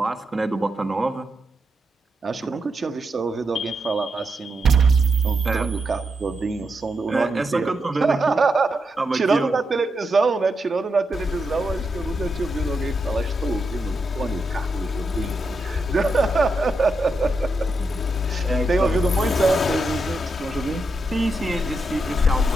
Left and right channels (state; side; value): normal; both; correlation 0.84